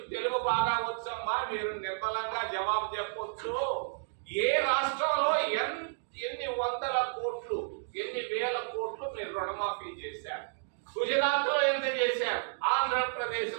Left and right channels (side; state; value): left; silent; digital silence